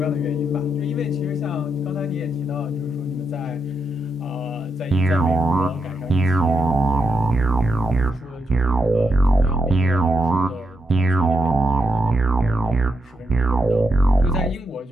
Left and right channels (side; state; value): both; normal; correlation 0.82